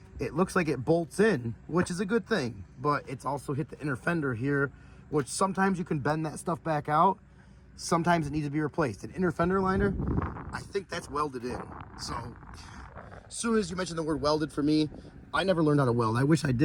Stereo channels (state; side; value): identical; both; correlation 1.00